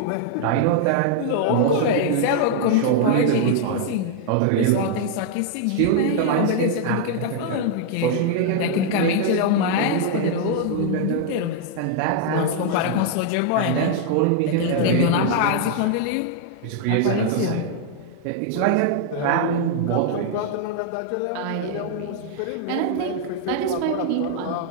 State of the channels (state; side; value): different; both; correlation 0.00